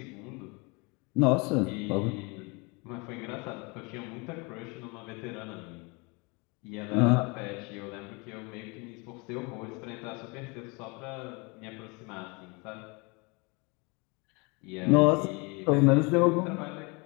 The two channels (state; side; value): quieter; right; 29.1 dB